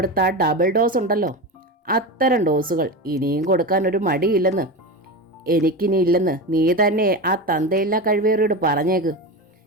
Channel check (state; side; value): normal; both; correlation 0.22